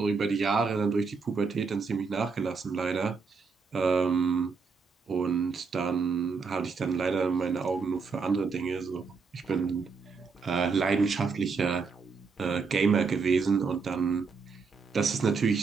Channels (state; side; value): quieter; left; 5.0 dB